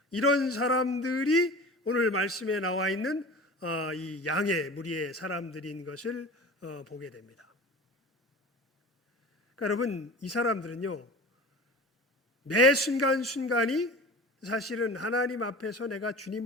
이런 사람들이 오늘 말씀에 나와 있는 이 양의 무리의 사람들인 것을 보게 됩니다. 그러니까 여러분, 이 사람들은요, 매 순간순간이 사실은 하나님 앞에서 내가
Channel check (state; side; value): normal; both; correlation 0.37